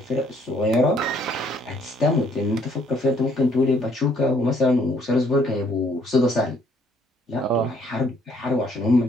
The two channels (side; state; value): both; normal; correlation 0.65